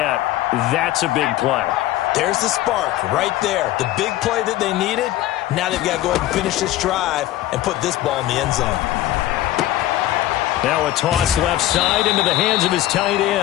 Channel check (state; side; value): quieter; right; 14.7 dB